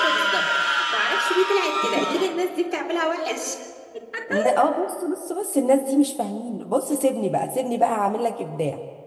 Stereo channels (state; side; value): identical; both; correlation 1.00